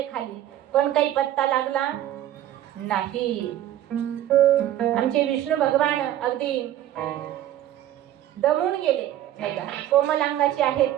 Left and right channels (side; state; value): left; quieter; 12.4 dB